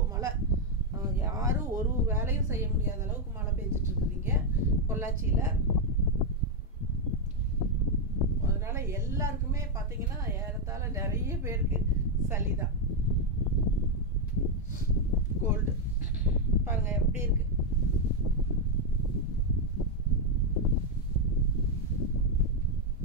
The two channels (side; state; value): both; normal; correlation 0.02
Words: மழை. யாரும் ஒரு வேலையும் செய்ய முடியாத அளவுக்கு மழை பெஞ்சிட்டு இருக்குதுங்க பொள்ளாச்சியில். அதனால எல்லாருக்குமே பார்த்தீங்கன்னா ஏறத்தாழ நிறைய பேருக்கு சளி தான், கோல்டு. பாருங்க எப்படி இருக்கு.